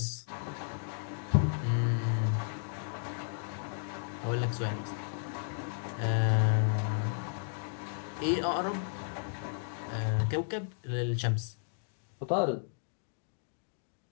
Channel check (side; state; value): right; silent; digital silence